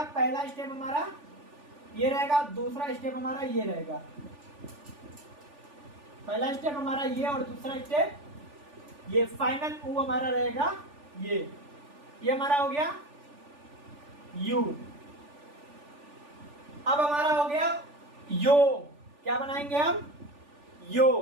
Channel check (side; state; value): left; late; 3.4 ms